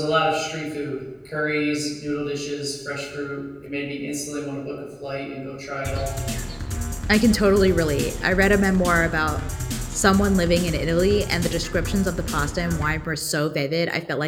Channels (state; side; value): identical; both; correlation 1.00